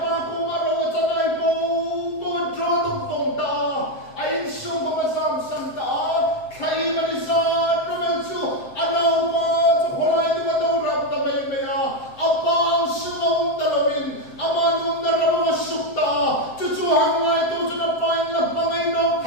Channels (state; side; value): late; right; 7.6 ms